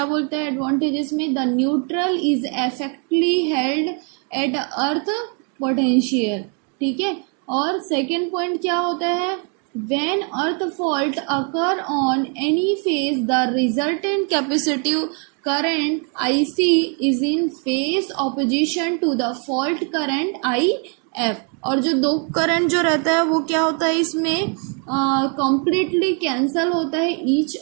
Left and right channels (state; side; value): quieter; left; 38.6 dB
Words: बोलता है एडवांटेजेस में, the neutral is effectively held at earth potential, ठीक है। और सेकेंड पॉइंट क्या होता है, when earth fault occur on any phase the resultant capacitive current IC is in phase opposition to the fault current IF। और जो दो current जो रहता है वो क्या होता है इसमें कंप्लीटली कैंसल होता है each